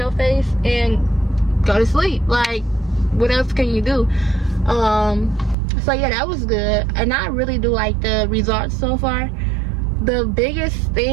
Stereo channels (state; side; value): drops out; left; at 5.6 s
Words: face and go to sleep. Like, what else can you do? So yeah, that was good, and I really do like the results so far. The biggest